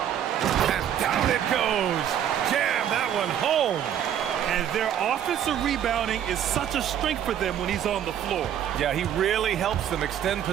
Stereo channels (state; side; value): quieter; left; 9.9 dB